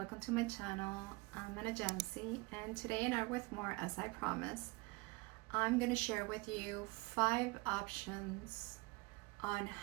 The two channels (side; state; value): left; quieter; 25.4 dB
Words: to my channel. I'm Anayansi, and today in Art with More, as I promised, I'm going to share with you 5 options on